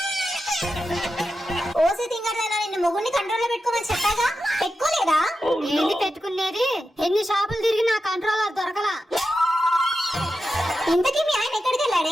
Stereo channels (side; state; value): both; normal; correlation 0.90